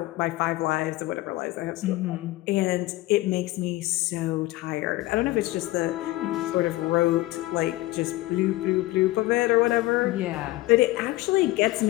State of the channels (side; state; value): right; quieter; 18.5 dB